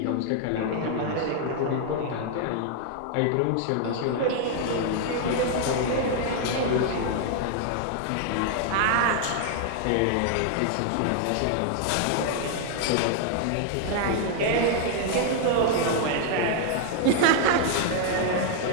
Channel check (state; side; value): different; both; correlation 0.00